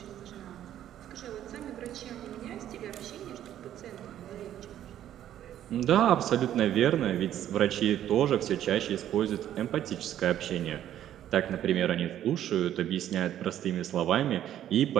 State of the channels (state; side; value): quieter; left; 11.4 dB